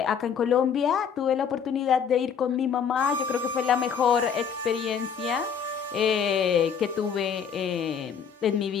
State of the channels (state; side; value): quieter; right; 7.1 dB